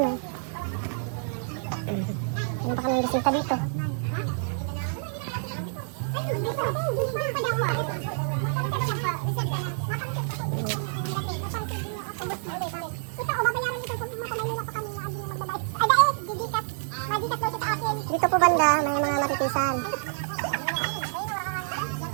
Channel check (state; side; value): silent; left; digital silence